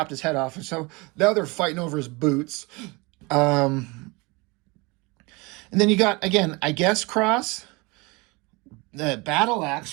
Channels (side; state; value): left; quieter; 26.2 dB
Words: his head off. And so now they're fighting over his boots. And then you got, again, I guess Cross, the Battle